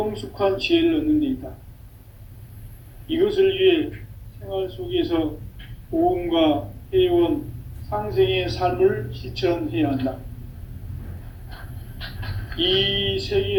지혜를 얻는 데 있다. 이것을 위해 생활 속에서 보험과 회원, 상생의 삶을 실천해야 한다. 이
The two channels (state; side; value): identical; both; correlation 1.00